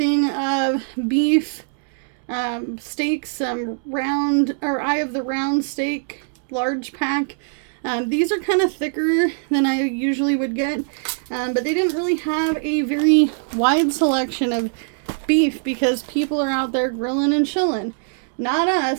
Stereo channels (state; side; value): silent; left; 65 dB below the other